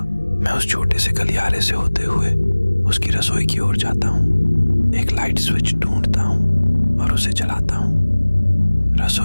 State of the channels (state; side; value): inverted; both; correlation -1.00